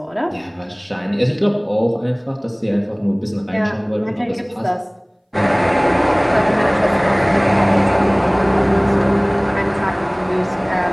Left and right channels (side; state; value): both; identical; correlation 1.00